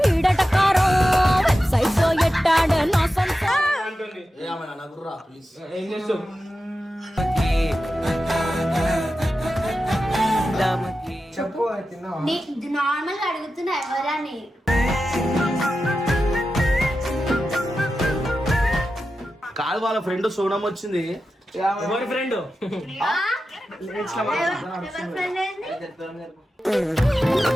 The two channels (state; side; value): normal; both; correlation 0.92